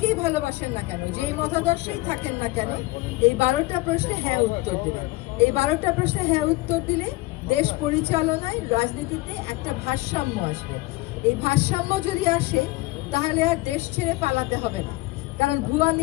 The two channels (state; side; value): quieter; right; 21.4 dB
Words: ভালোবাসেন না কেন, যেই মতাদর্শেই থাকেন না কেন, এই 12টা প্রশ্নে হ্যাঁ উত্তর দেবেন। এই 12টা প্রশ্নে হ্যাঁ উত্তর দিলে দেশ পরিচালনায়, রাজনীতিতে একটা ভারসাম্য আসবে। এই ভারসাম্য যদি আসে তাহলে আর দেশ ছেড়ে পালাতে হবে না, কারণ ভুয়া